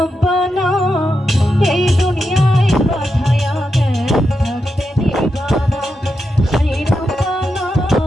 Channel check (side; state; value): both; normal; correlation 0.86